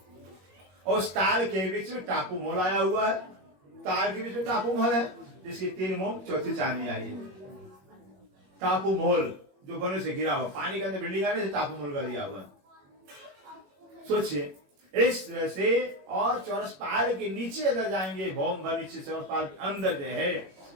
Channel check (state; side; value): late; left; 21 ms